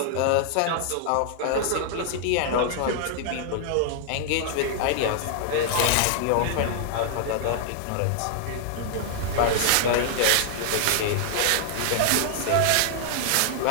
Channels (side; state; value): both; different; correlation 0.00